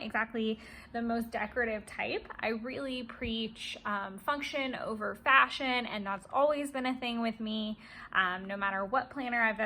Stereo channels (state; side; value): identical; both; correlation 1.00